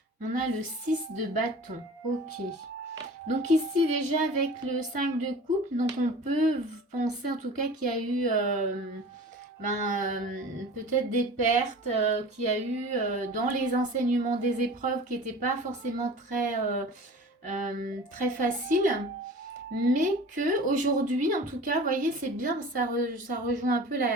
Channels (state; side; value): normal; both; correlation 0.40